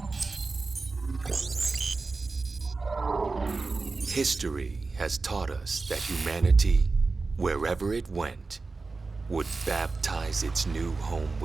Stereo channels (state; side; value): quieter; left; 3.9 dB